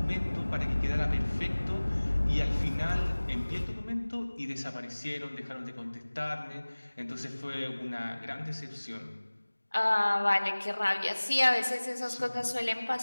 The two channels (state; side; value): inverted; both; correlation -1.00